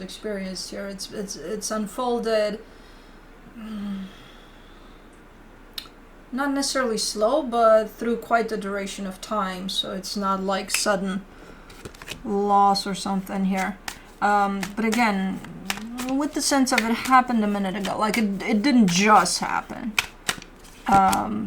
experienced here. It's unfolded, not necessarily slow, but through quite the duration of time. So it's not like sudden loss or something here. But again, with the sense of it happened a minute ago, like it didn't just happen.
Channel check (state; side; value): identical; both; correlation 1.00